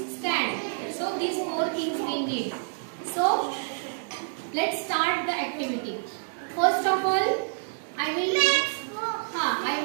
stand. So these four things we need. So let's start the activity. First of all, I will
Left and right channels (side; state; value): left; silent; 60 dB below the other